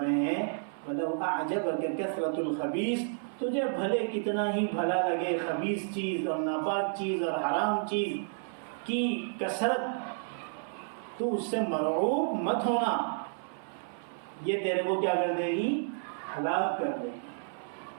رہے ہیں وَلَوْ أَعْجَبَكَ كَثْرَةُ الْخَبِيثِ، تجھے بھلے کتنا ہی بھلا لگے خبیث چیز اور ناپاک چیز اور حرام چیز کی کثرت، تو اس سے مرعوب مت ہونا، یہ تیرے کو کیا کر دے گی؟ ہلاک کر دے گی۔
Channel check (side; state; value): left; silent; 57 dB below the other